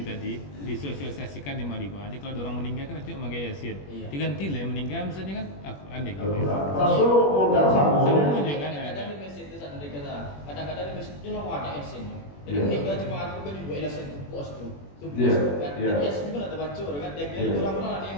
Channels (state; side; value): late; right; 21 ms